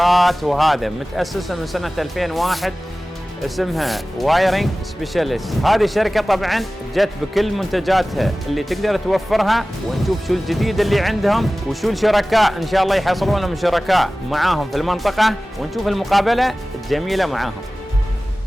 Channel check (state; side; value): normal; both; correlation 0.97